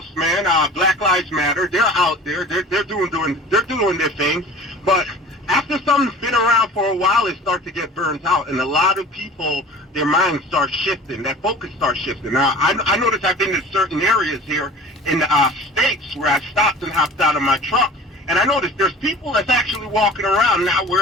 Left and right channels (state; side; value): normal; both; correlation 0.42